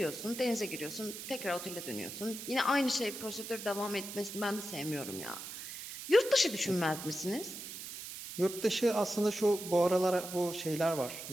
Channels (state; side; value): noise; right; hiss, 9 dB below the sound